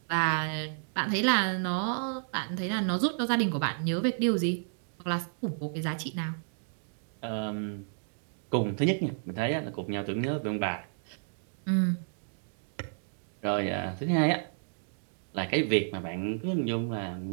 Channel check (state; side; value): silent; left; digital silence